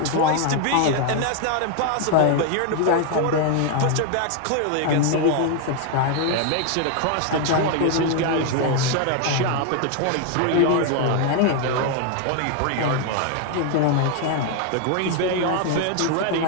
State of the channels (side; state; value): both; different; correlation 0.00